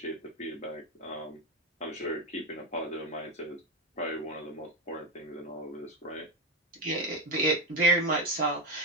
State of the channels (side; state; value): both; normal; correlation 0.09